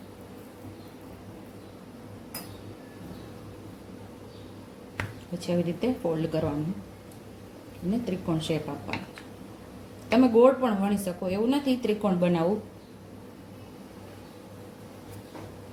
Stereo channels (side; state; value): both; identical; correlation 1.00